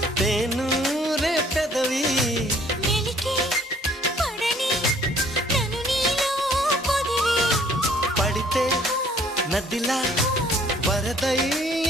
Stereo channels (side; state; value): both; normal; correlation 0.59